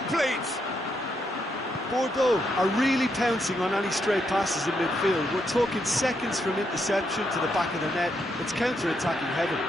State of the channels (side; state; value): both; normal; correlation 0.79